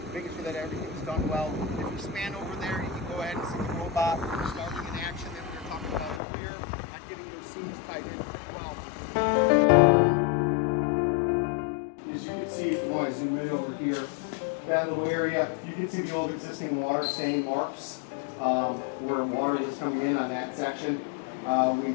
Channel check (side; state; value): right; drops out; at 6.2 s